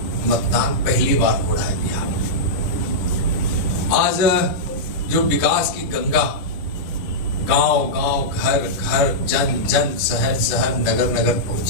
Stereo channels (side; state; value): right; late; 11 ms